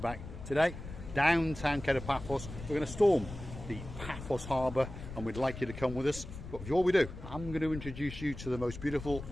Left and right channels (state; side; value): noise; left; rumble, 11 dB below the sound